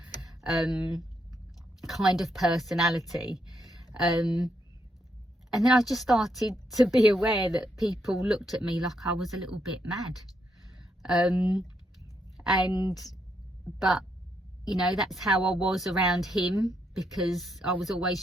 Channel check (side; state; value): both; normal; correlation 0.78